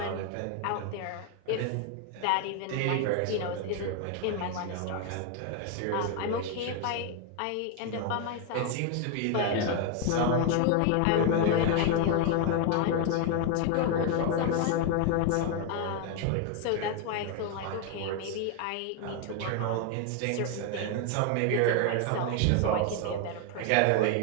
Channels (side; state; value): both; different; correlation 0.01